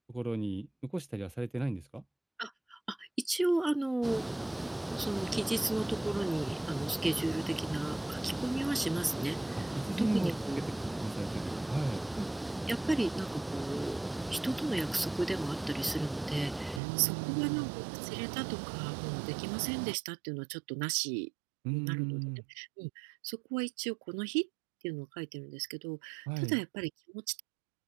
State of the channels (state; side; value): drops out; left; at 16.8 s